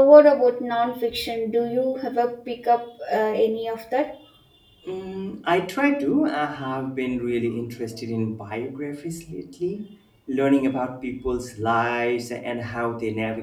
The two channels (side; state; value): both; identical; correlation 1.00